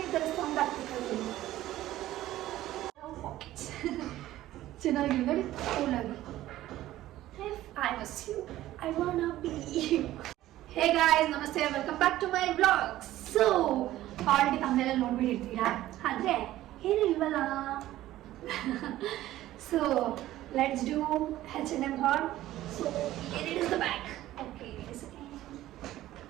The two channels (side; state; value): left; quieter; 14.7 dB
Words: ಈ ಥರ ಸೌಂಡ್ ಆಗ್ತಿತ್ತು. ಚೆನ್ನಾಗಿ ನೋಡಿ ಕೂಲಾಗಿ. I miss you. I wanna be you. Hey guys, ನಮಸ್ತೆ, welcome back to my vlog. So already ತಮ್ಮನೆಲ್ಲ ನೋಡ್ಬಿಟ್ಟಿರ್ತೀರಾ, ಆದರೆ ಏನು ಇಲ್ವಲ್ಲ. So let's do H&M haul. So here it is the bag. Okay, wait a second.